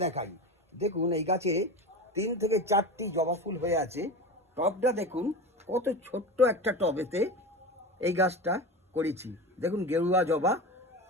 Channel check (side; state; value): both; normal; correlation 0.27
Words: দেখাই। দেখুন এই গাছে 3 থেকে 4টি জবা ফুল হয়ে আছে। টবটা দেখুন, কত ছোট্ট একটা টবেতে এই গাছটা করেছি। দেখুন গেরুয়া জবা,